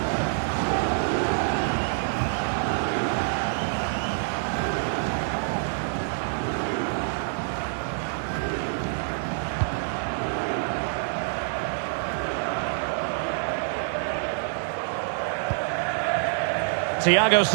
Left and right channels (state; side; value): silent; left; digital silence